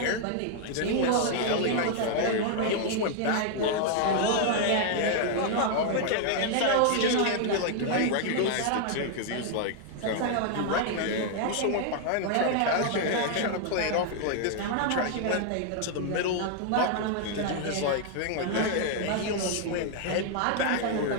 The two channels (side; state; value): both; different; correlation 0.00